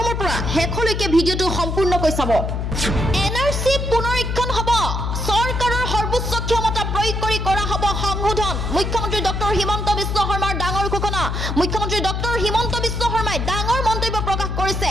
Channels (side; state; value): left; noise; hum, 2 dB below the sound